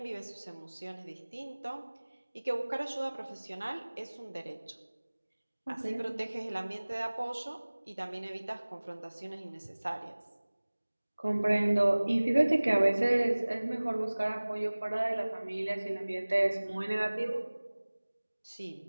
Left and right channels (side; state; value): both; inverted; correlation -1.00